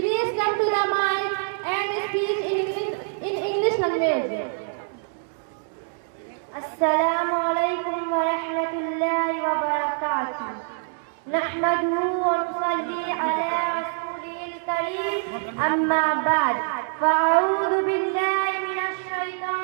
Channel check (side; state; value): left; silent; 62 dB below the other